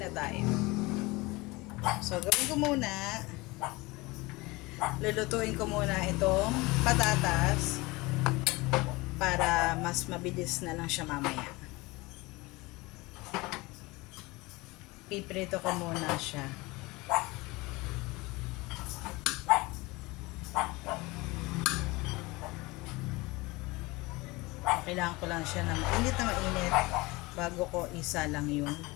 na tayo. So, gawin ko muna, lulutuin ko muna itong patatas para mas mabilis na lang siya mamaya. Piprito ko muna siya. Kailangan ko lang siya ng mainit na mainit bago ko isa lang yung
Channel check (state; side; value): quieter; right; 23.0 dB